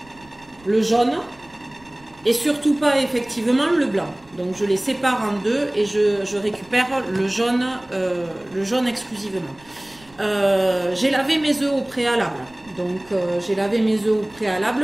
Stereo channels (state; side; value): noise; right; rumble, 27 dB below the sound